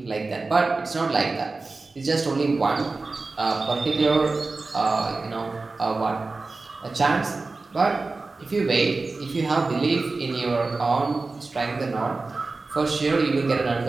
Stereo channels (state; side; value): quieter; left; 3.7 dB